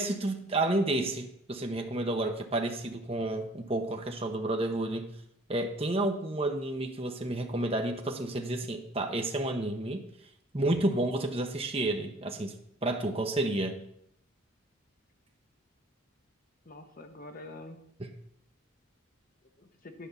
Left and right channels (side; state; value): both; normal; correlation 0.54